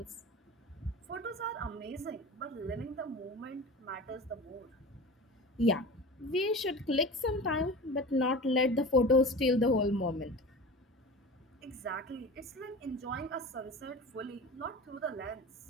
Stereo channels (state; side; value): normal; both; correlation 0.34